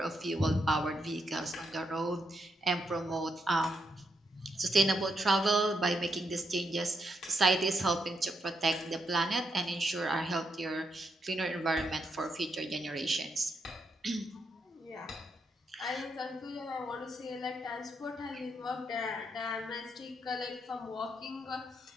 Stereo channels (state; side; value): normal; both; correlation 0.80